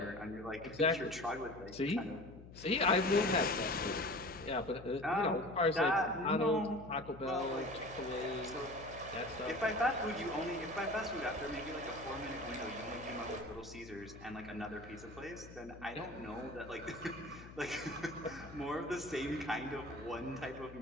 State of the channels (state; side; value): noise; left; hum, 16 dB below the sound